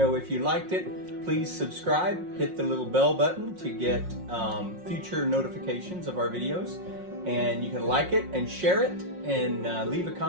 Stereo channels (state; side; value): late; left; 5.5 ms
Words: If you liked it, please subscribe, hit the little bell button to get future notifications of our videos. And you can like it and share it and leave a